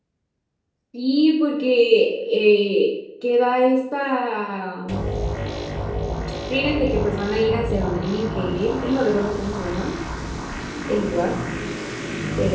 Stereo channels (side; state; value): both; identical; correlation 1.00